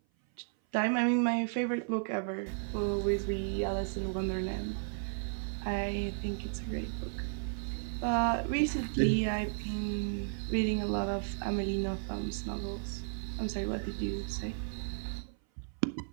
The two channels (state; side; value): silent; left; 55 dB below the other